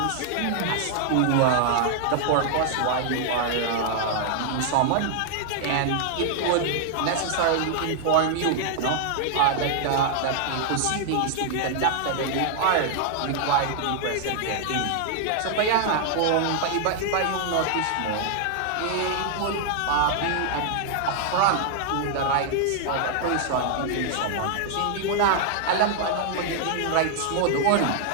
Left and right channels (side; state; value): both; different; correlation 0.00